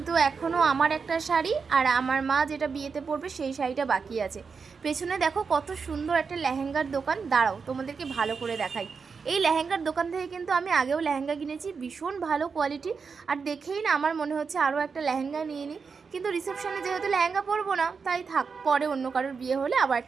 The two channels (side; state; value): left; quieter; 5.4 dB